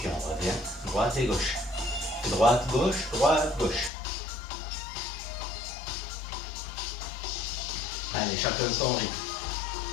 on revient, droite et gauche. Droite, gauche, droite, gauche. Allez, chacun son rythme.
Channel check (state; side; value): drops out; right; at 3.9 s